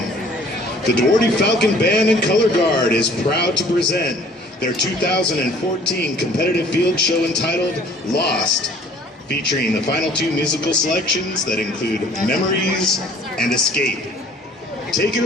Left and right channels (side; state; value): both; normal; correlation 0.54